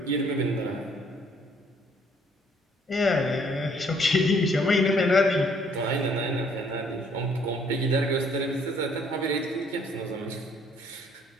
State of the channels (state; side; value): normal; both; correlation 0.63